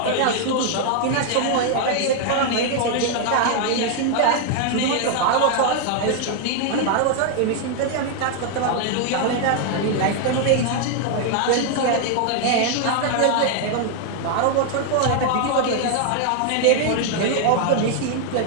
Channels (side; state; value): both; different; correlation 0.00